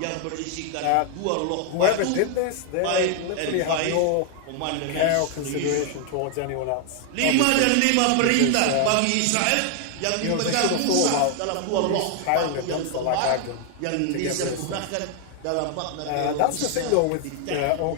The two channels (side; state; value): both; different; correlation 0.00